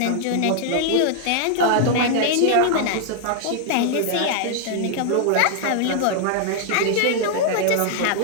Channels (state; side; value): different; both; correlation 0.00